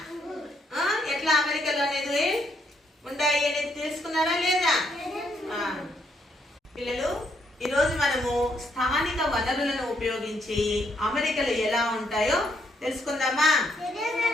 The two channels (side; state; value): both; normal; correlation 0.73